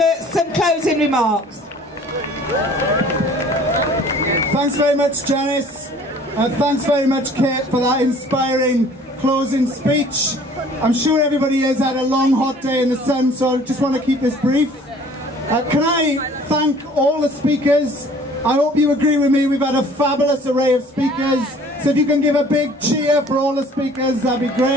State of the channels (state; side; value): normal; both; correlation 0.52